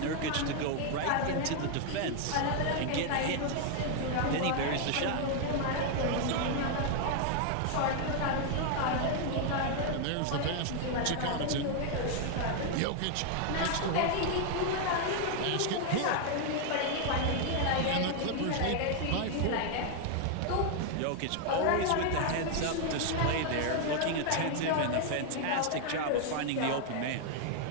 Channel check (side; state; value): both; different; correlation 0.00